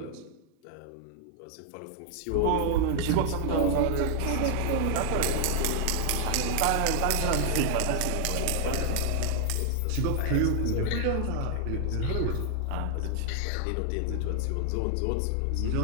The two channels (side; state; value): both; different; correlation 0.00